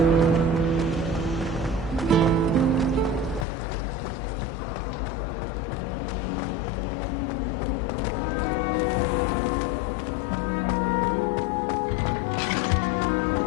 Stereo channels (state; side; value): drops out; right; at 3.5 s